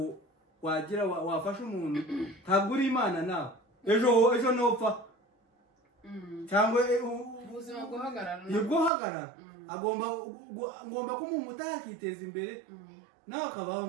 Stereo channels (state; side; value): drops out; left; at 8.9 s